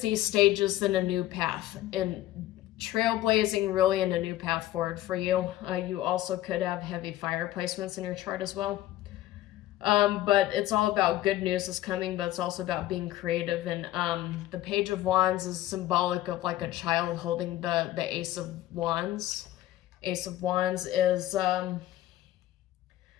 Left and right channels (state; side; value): quieter; right; 14.6 dB